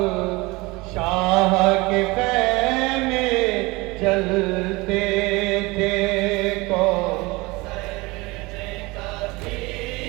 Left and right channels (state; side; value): quieter; left; 23.4 dB